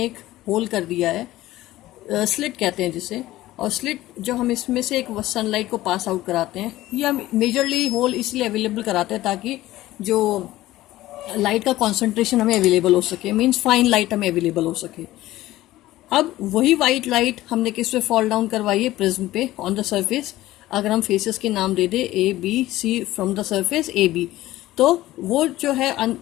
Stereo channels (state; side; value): quieter; right; 16.1 dB